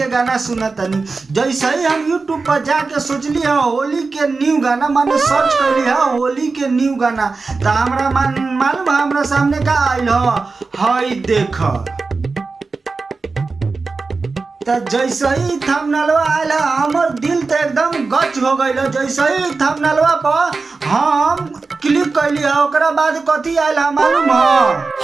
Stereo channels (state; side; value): quieter; left; 4.1 dB